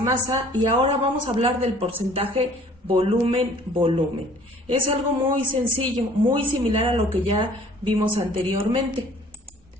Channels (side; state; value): both; normal; correlation 0.53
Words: y ahora vamos a hablar del porcentaje volumen-volumen. Es algo muy sencillo, muy similar a lo que ya vimos anteriormente.